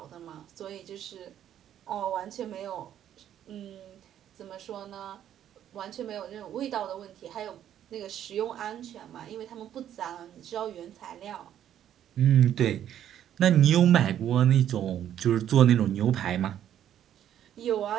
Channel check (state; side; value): quieter; left; 10.6 dB